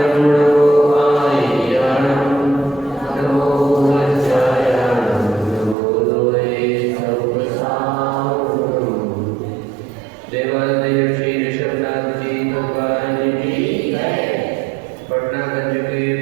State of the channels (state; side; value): drops out; left; at 5.8 s